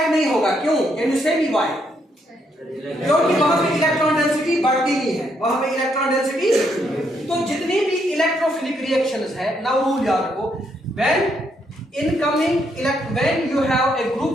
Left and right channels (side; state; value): both; normal; correlation 0.75